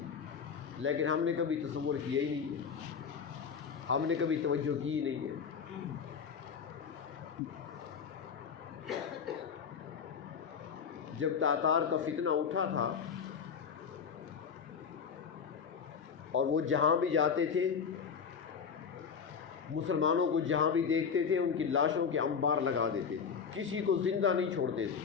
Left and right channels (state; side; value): quieter; right; 6.5 dB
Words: لیکن ہم نے کبھی تصور کیا ہی نہیں ہے، ہم نے کبھی توجہ کی ہی نہیں ہے۔ جب تاتار کا فتنہ اٹھا تھا اور وہ جہاں بھی جاتے تھے، مسلمانوں کو جہاں بھی دیکھتے تھے ان کی لاشوں کے انبار لگا دیتے تھے، کسی کو زندہ نہیں چھوڑتے تھے۔